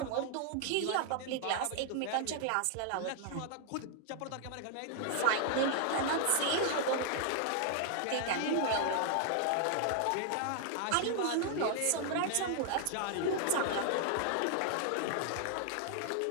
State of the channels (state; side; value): different; both; correlation 0.00